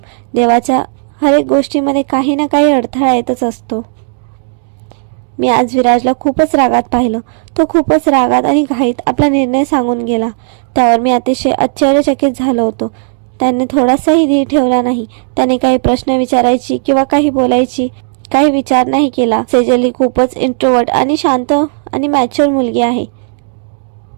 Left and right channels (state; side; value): silent; left; digital silence